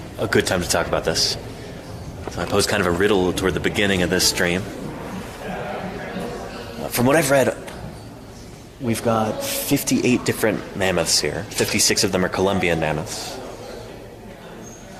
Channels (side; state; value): both; identical; correlation 1.00